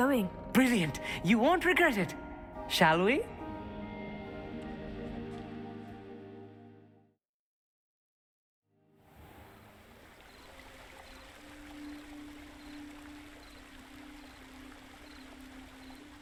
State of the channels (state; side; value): identical; both; correlation 1.00